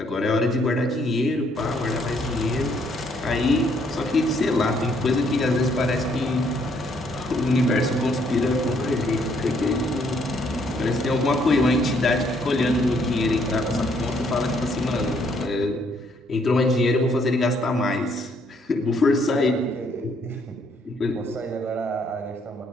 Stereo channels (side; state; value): both; normal; correlation 0.69